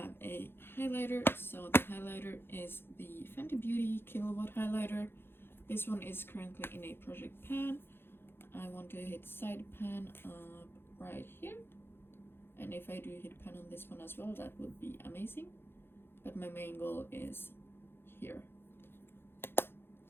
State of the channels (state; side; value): late; right; 0.11 ms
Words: a highlighter. So the highlighter is the Fenty Beauty Kilowatt highlighter. This one is currently in a project pan. I want to hit side pan up right here, And if I do hit pan on this one as well, that would be amazing. But my main goal is here.